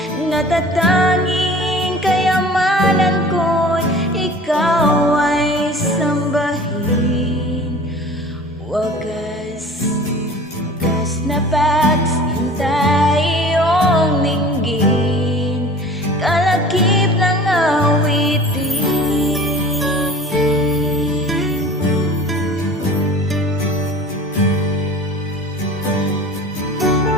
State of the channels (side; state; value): both; normal; correlation 0.43